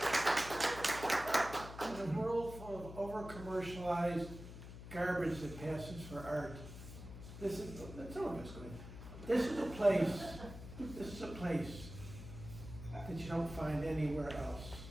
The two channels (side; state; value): left; noise; hum, 12 dB below the sound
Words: a world full of over-commercialized garbage that passes for art, that's all I'm just going. This is a place that you don't find anywhere else.